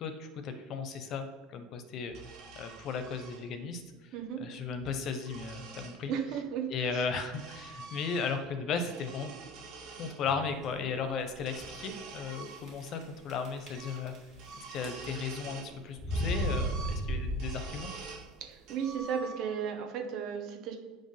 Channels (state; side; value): normal; both; correlation 0.38